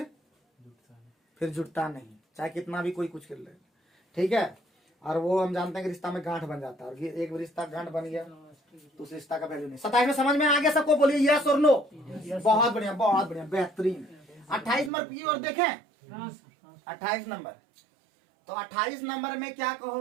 जुड़ता नहीं, चाहे कितना भी कोई कुछ कर ले, ठीक है। और वो हम जानते हैं कि रिश्ता में गांठ बन जाता है, और एक रिश्ता गांठ बन गया तो उस रिश्ता का वैल्यू नहीं। 27 में समझ में आ गया सबको? बोलिए यस और नो। बहुत बढ़िया, बहुत बढ़िया, बेहतरीन। 28 नंबर की ओर देखें। 28 नंबर, तो 28 नंबर में क्या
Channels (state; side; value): drops out; left; at 14.9 s